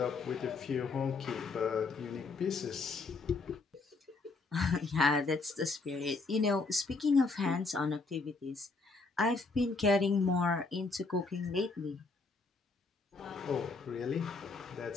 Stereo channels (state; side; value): quieter; right; 3.9 dB